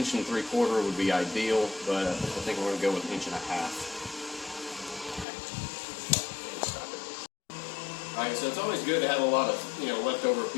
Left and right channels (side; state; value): right; drops out; at 5.2 s